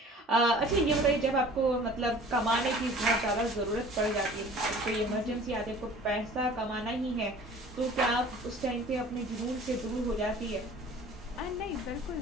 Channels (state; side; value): normal; both; correlation 0.46